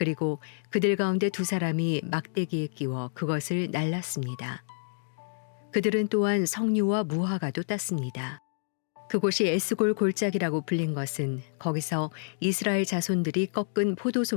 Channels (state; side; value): silent; right; digital silence